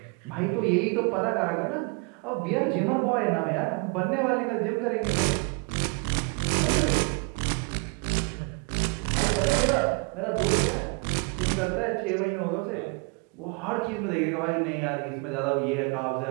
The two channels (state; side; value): quieter; left; 32.4 dB